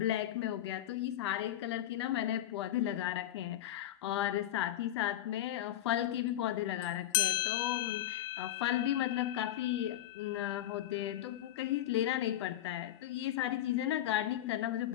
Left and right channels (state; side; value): quieter; right; 12.8 dB